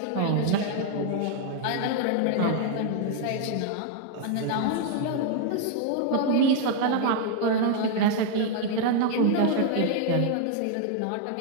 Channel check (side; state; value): both; different; correlation 0.00